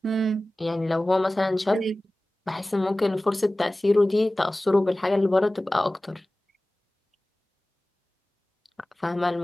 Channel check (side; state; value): both; normal; correlation 0.97